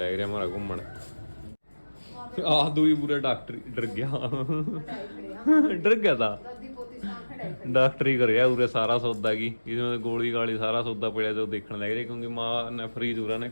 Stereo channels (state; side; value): inverted; both; correlation -1.00